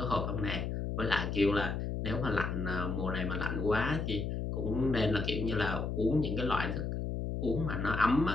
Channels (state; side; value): noise; left; hum, 2 dB below the sound